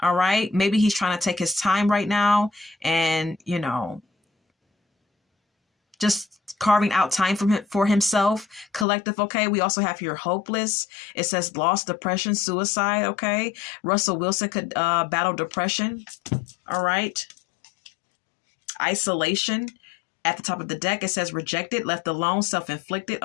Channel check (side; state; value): right; drops out; at 8.8 s